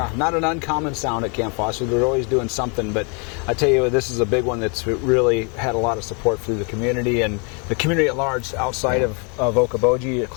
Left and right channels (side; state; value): right; quieter; 34.8 dB